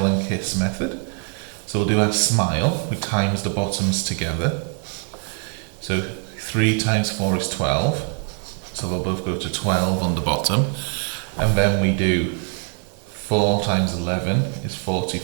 and kiss method. So we'll do our smile. We times the bottoms together. So 3 times 4 is 12. So they'll both go to 12 on the bottom. And then we do 4 times 11 is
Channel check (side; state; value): left; quieter; 38.0 dB